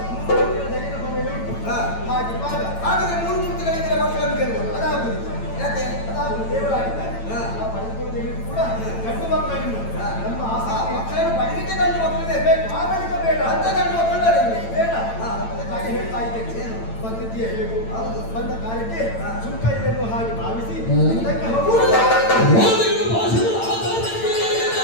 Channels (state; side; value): late; right; 8.9 ms